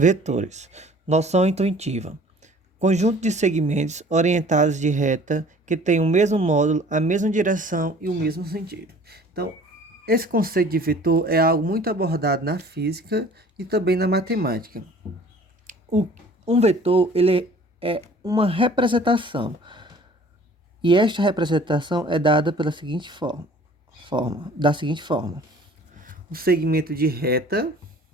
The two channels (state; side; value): normal; both; correlation 0.50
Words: Noção intuitiva. Conjunto de segmentos orientados de reta que tem o mesmo módulo, a mesma direção e o mesmo sentido. Então, esse conceito de vetor é algo muito abordado na física e também na matemática. Um vetor ele é uma representação. E esta representação é dada pela seguinte da seguinte forma. Um segmento de reta